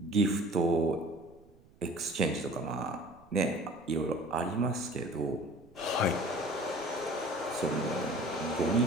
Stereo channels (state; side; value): noise; right; rumble, 27 dB below the sound